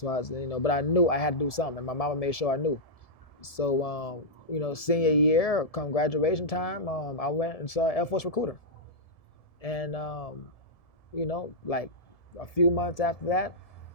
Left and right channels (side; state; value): right; late; 1.7 ms